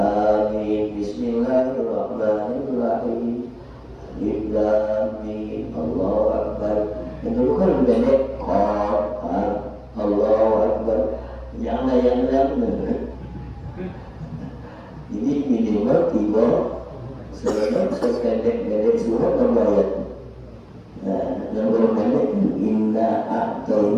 Bismillahirrahmanirrahim. Alif Lam Mim. Allahu Akbar. Yang dulu kan pendek. Allahu Akbar. Jangan yang lain. Jadi minimal 3 sependek surat ayat. Nah, yang pendek inna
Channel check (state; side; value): identical; both; correlation 1.00